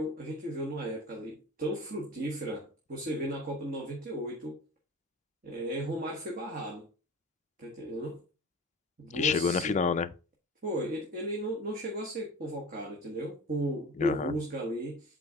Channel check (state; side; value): normal; both; correlation 0.37